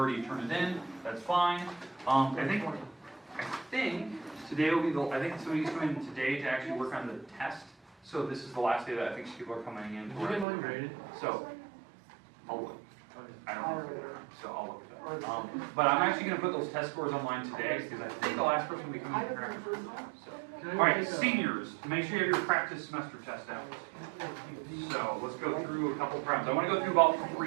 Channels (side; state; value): left; drops out; at 10.5 s